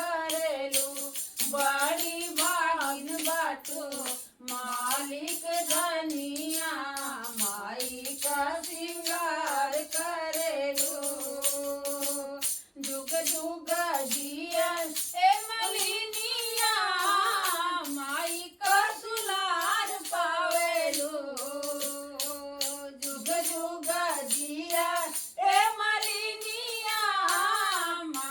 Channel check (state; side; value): identical; both; correlation 1.00